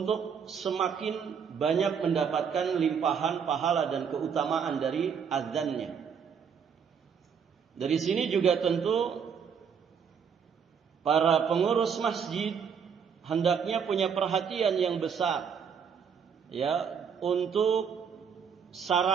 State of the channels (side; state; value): left; quieter; 6.9 dB